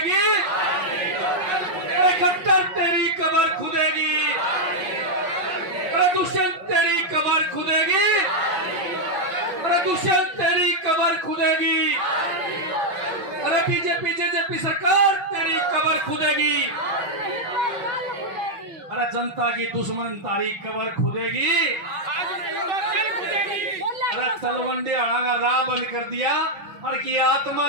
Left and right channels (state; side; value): late; left; 5.3 ms